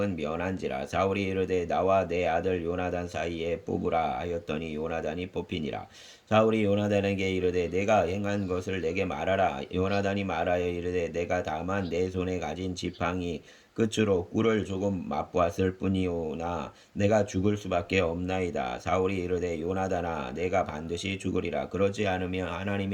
면한지라. 사울이 이르되 나와 내 아들 요나단 사이에 뽑으라 하였더니 요나단이 뽑히니라. 사울이 요나단에게 이르되 내가 행한 것을 내게 말하라. 요나단이 말하여 이르되 내가 다만 내 손에 가진 지팡이 끝으로 꿀을 조금 맛보았을 뿐이오나 내가 죽을 수밖에 없나이다. 사울이 이르되 요나단아 내가 반드시 죽으리라. 그렇지 않으면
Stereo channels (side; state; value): both; identical; correlation 1.00